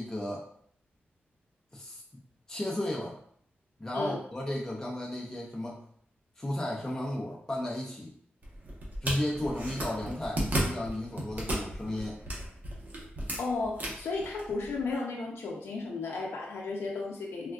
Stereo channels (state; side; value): normal; both; correlation 0.84